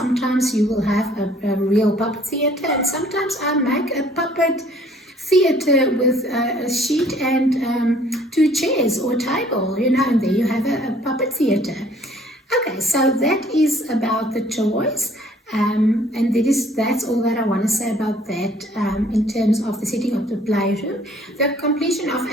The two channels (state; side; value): normal; both; correlation 0.58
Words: you will have a real puppet theatre, and sometimes I make a puppet theatre with a sheet and two chairs or a table, and there you have a puppet theatre. Okay, so that is about the toys, and that's all that I want to say about that in terms of the setting of the playroom. The completion of